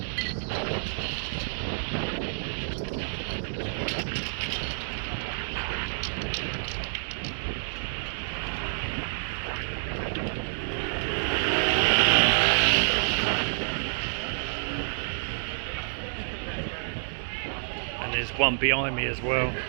And there's one behind me as well.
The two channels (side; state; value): left; silent; digital silence